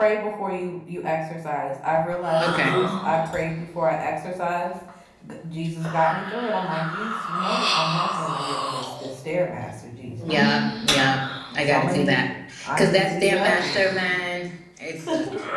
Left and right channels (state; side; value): identical; both; correlation 1.00